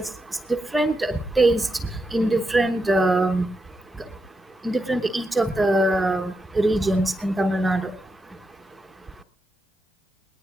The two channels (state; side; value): normal; both; correlation 0.86